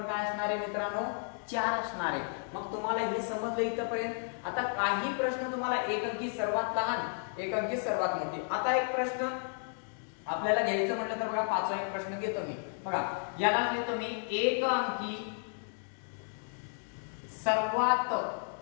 काय असणार आहे मित्रांनो, 4 असणार आहे. मग तुम्हाला हे समजलं इथपर्यंत. आता काही प्रश्न तुम्हाला एक अंकी सर्वात लहान, एक अंकी सर्वात मोठी. आता एक प्रश्न आपल्याला घ्यायचं म्हटलं तर बघा, पाचवा एक प्रश्न घेतो मी बघा, याला घेतो मी एक अंकी सर्वात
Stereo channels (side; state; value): right; silent; 56 dB below the other